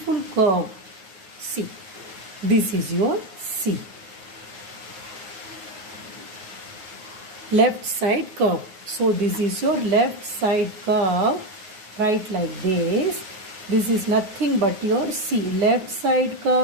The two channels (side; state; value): left; late; 9.5 ms